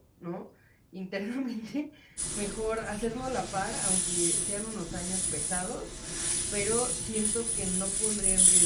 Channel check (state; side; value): identical; both; correlation 1.00